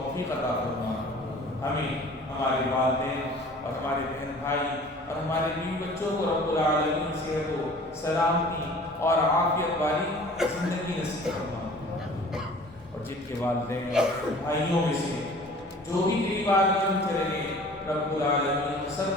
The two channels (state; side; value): normal; both; correlation 0.47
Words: عطا فرمائے، ہمیں ہمارے والدین اور ہمارے بہن بھائی اور ہمارے بیوی بچوں کو رب العالمین صحت و سلامتی اور عافیت والی زندگی نصیب فرمائے، اور جن کے والدین اور بھائیوں میں سے جو بھی تیری بارگاہ میں چلے گئے رب العالمین